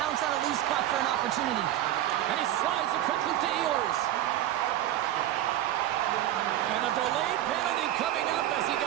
on a loose puck for an opportunity. And he slides it quickly to Ehlers. And a delayed penalty coming up as he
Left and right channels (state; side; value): quieter; left; 13.0 dB